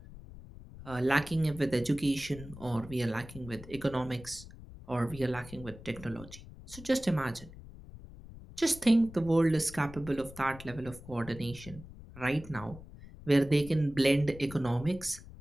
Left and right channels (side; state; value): left; noise; rumble, 16 dB below the sound